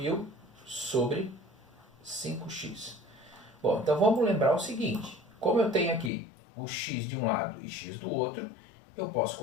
sobre 5x. Bom, então vamos lembrar o seguinte. Como eu tenho aqui o x de um lado e x do outro, eu posso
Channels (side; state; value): right; drops out; at 6.1 s